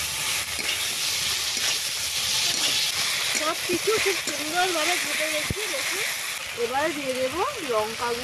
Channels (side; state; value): both; identical; correlation 1.00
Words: সব কিছু খুব সুন্দরভাবে ভেজে রেখে দেখুন। এবারে দিয়ে দেবো লঙ্কা